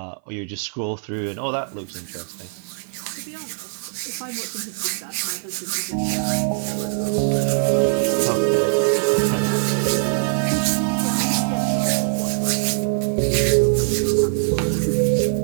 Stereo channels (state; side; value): silent; left; 58 dB below the other